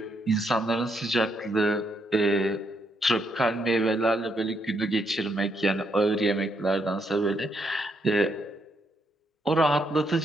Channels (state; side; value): normal; both; correlation 0.76